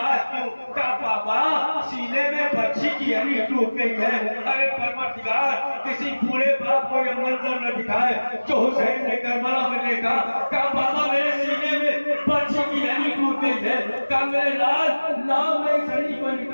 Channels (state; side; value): inverted; both; correlation -1.00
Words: کیوں؟ کہا بابا سینے میں بچی کی ہڈی ٹوٹ گئی ہے۔ ارے پروردگار کسی بوڑھے باپ کو یہ منظر نہ دکھائے جو حسین نے کربلا میں دیکھا۔ کہا بابا میرے سینے میں بچی کی ہڈی ٹوٹ گئی ہے۔ کہا میرے لال لاؤ میں اس ہڈی کو